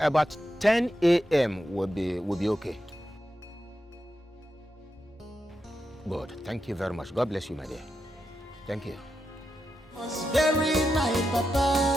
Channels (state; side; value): normal; both; correlation 0.87